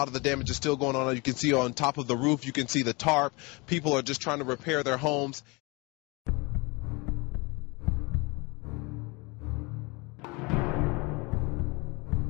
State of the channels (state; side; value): quieter; right; 27.0 dB